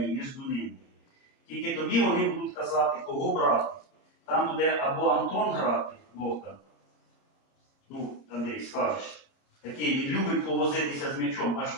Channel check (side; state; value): right; late; 29 ms